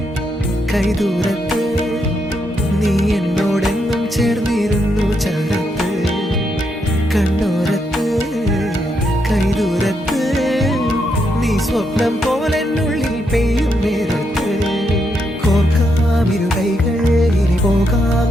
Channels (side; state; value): both; normal; correlation 0.80